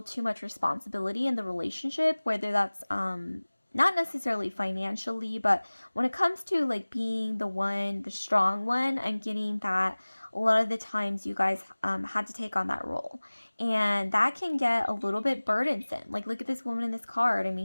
too much responsibility in the relationship, whether that's not necessarily financially, but when it comes to like being the one, the strong one, I'm getting that a lot of the times you guys had to take on that role, and that can get a little bit burdensome. Like, look at this woman in this card. I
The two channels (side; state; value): both; inverted; correlation -1.00